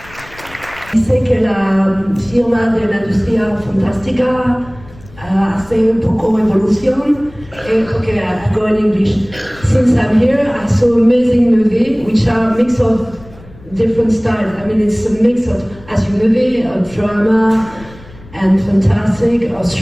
Sé que la firma de la industria fantástica hace un poco evolución. Okay, I go in English. Since I'm here, I saw amazing movie, which are a mix of different styles. I mean, it's a mix of, as you movie, of drama and fantastic, or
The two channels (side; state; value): left; noise; rumble, 21 dB below the sound